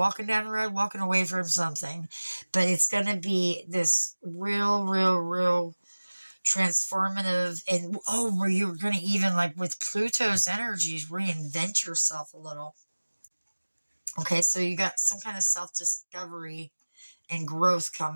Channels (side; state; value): both; inverted; correlation -1.00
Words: down the road, walking away from something. But it's going to be this real transformative, and where you're going to even, like with Pluto's energies, reinvent yourself a little. Okay, so you got some kind of self-discovery and growth